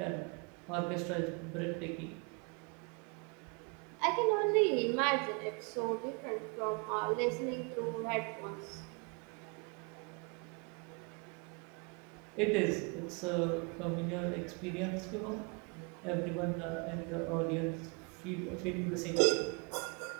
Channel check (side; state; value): left; quieter; 33.6 dB